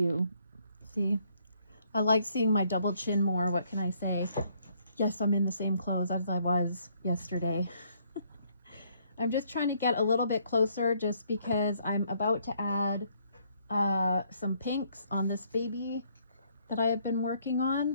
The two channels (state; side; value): inverted; both; correlation -0.67